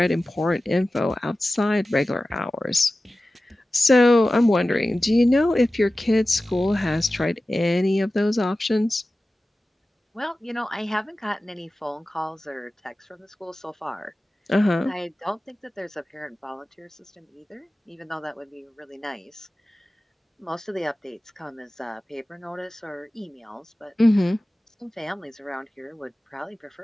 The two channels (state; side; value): normal; both; correlation 0.96